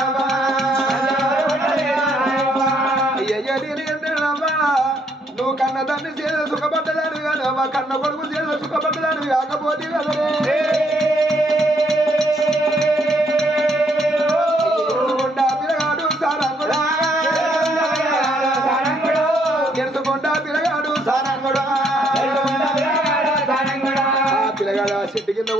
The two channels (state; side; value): normal; both; correlation 0.70